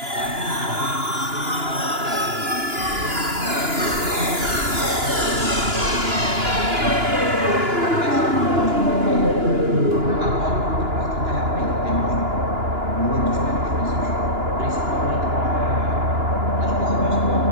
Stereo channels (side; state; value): left; late; 2.9 ms